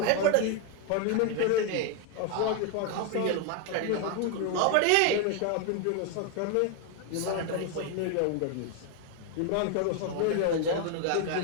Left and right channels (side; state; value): both; different; correlation 0.01